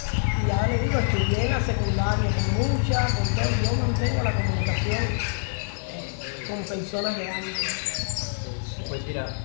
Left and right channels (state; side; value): silent; right; digital silence